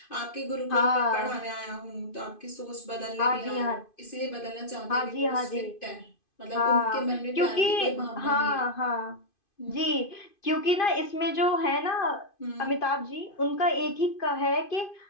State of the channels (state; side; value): late; right; 2.5 ms